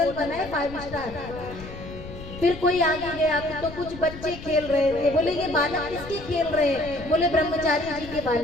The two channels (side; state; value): left; noise; rumble, 13 dB below the sound